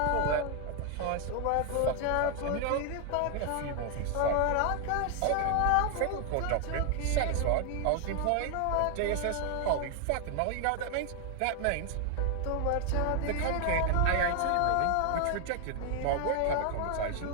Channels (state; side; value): different; both; correlation 0.00